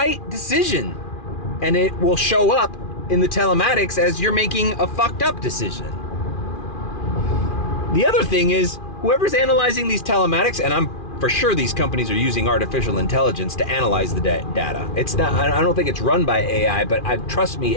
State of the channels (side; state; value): right; late; 2.4 ms